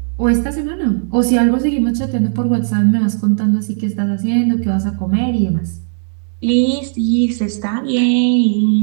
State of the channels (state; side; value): silent; left; digital silence